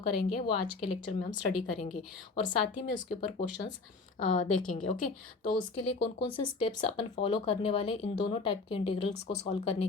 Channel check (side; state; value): right; quieter; 3.9 dB